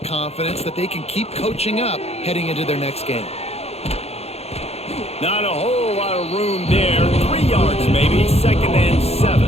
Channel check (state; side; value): late; right; 0.30 ms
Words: confidence that they can keep coaching up heading into their next game. Not a whole lot of room there. 3 yards maybe, 2nd and